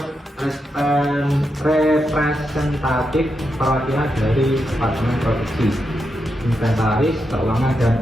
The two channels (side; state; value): both; normal; correlation 0.85